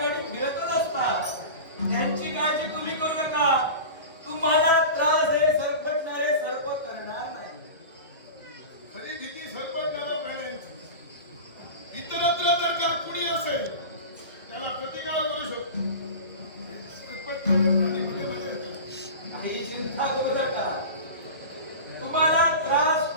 फिरतच असतात. त्यांची काळजी तुम्ही करू नका. तुम्हाला त्रास हे सरपटणारे सर्प करणार नाही. खरी भीती सरपटणाऱ्या प्राण्यांची. इतरत्र जर का कुणी असेल त्याला प्रतिकार करू शकतो. सरपटणारे प्राणी मध्ये मध्ये येतात. काही चिंता करू नका. तुम्हाला त्रास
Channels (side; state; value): both; inverted; correlation -0.31